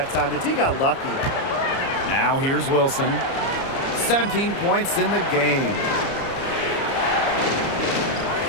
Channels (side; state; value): right; late; 30 ms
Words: time. The D got lucky. Now here's Wilson. 17 points in the game.